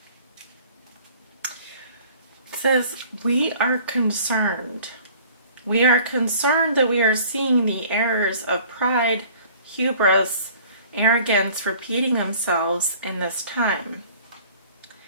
Says, we are concerned. We are concerned that we are seeing the errors of pride, hubris, arrogance repeating themselves in this time.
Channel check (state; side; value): inverted; both; correlation -0.51